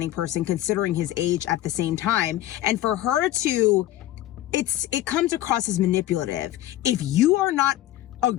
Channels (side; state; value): right; quieter; 14.2 dB